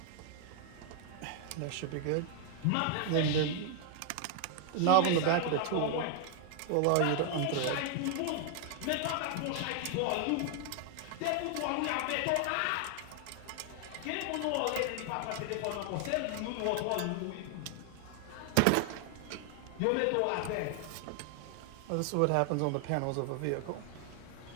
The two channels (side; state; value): both; different; correlation 0.00